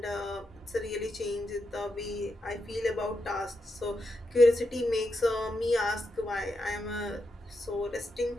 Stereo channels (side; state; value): both; normal; correlation 0.85